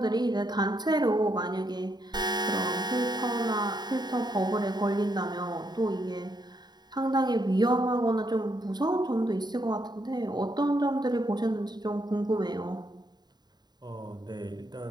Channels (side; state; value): left; late; 0.20 ms